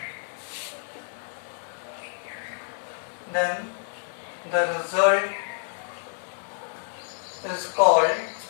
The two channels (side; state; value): right; silent; digital silence